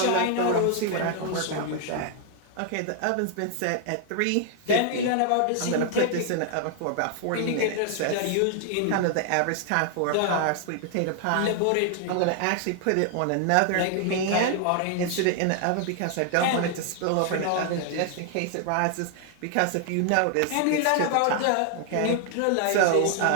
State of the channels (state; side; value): different; both; correlation 0.00